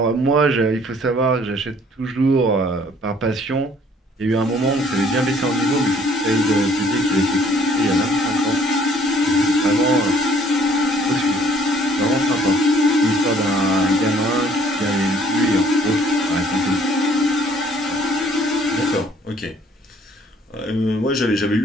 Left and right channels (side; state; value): both; normal; correlation 0.59